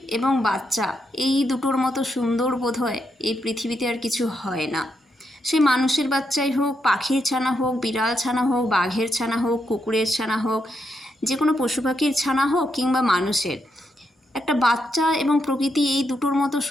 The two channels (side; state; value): both; normal; correlation 0.81